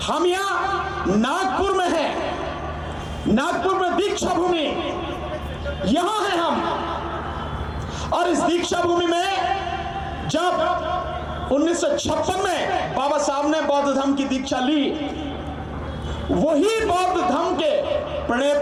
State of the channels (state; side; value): identical; both; correlation 1.00